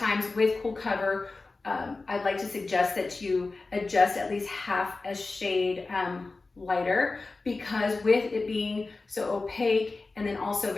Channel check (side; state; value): right; quieter; 3.6 dB